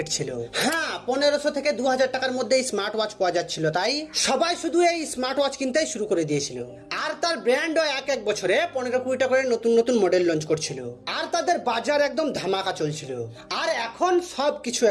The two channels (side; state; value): both; identical; correlation 1.00